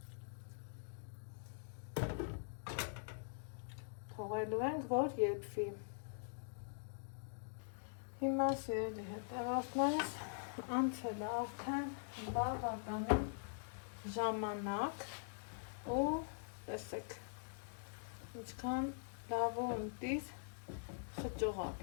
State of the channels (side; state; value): right; silent; digital silence